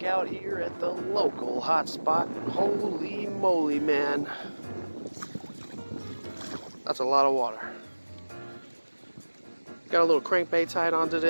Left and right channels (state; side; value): inverted; both; correlation -1.00